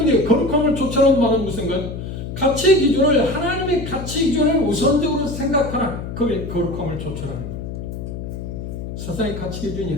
거룩함을 쫓아오는 말은 무슨가요? 가치 기준을, 하나님의 가치 기준을 우선적으로 생각하라. 그게 거룩함을 쫓아라. 세상의 가치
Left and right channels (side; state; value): left; noise; hum, 7 dB below the sound